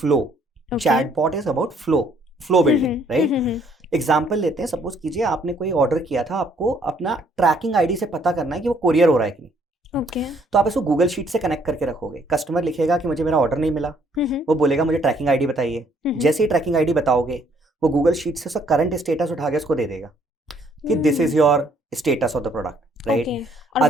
Chatbot is about flow building, right? Example लेते हैं, सपोज कीजिए आपने कोई ऑर्डर किया था, आपको अपना ट्रैकिंग आईडी से पता करना है कि वो कोरियर हो रहा है कि नहीं। तो आप इसको गूगल शीट से कनेक्ट करके रखोगे। कस्टमर लिखेगा कि मुझे मेरा ऑर्डर नहीं मिला, वो बोलेगा मुझे ट्रैकिंग आईडी बताइए। जैसे ही ट्रैकिंग आईडी बताओगे वो गूगल शीट से उसका करंट स्टेटस उठा के उसको दे देगा कि this is your status of the product, right? और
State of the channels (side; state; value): both; normal; correlation 0.65